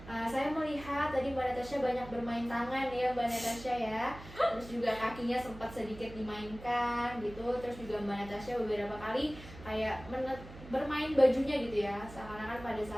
saya melihat tadi Mbak Natasha banyak bermain tangan ya Mbak Natasha ya, terus juga kakinya sempat sedikit dimainkan gitu, terus juga Mbak Natasha beberapa kali kayak bermain bajunya gitu ya, seakan-akan pada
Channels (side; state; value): right; noise; hum, 16 dB below the sound